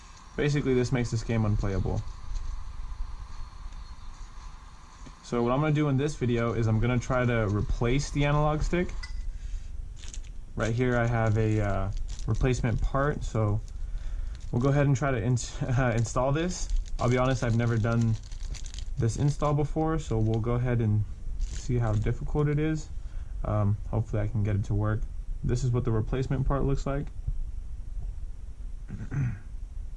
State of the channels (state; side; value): identical; both; correlation 1.00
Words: Basically, this makes this game unplayable. So what I'm going to do in this video is I'm going to try to replace the analog stick. Right here I have a replacement part, so we'll go ahead and try to install this. I'll be honest, I've never done this install before, so we'll go ahead and see how difficult it is. Hopefully I can get it to work. This is what the replacement part looks like.